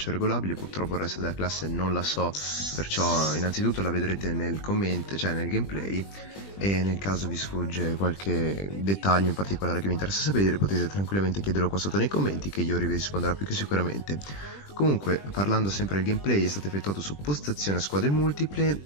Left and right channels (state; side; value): late; right; 20 ms